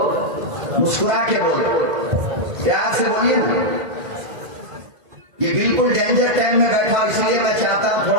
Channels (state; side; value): late; left; 2.0 ms